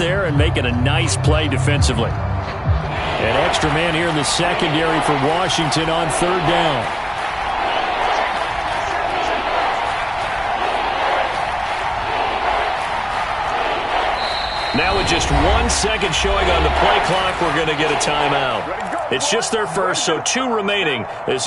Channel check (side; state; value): both; identical; correlation 1.00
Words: and making a nice play defensively. An extra man here in the secondary for Washington on 3rd down. Now with just 1 second showing on the play clock, we're going to get a timeout. It's just their first, so 2 remaining as